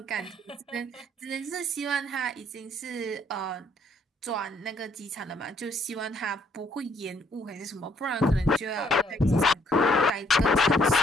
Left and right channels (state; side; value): normal; both; correlation 0.67